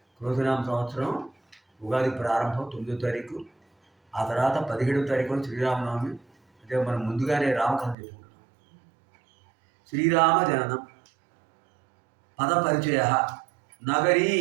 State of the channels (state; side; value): drops out; left; at 8.0 s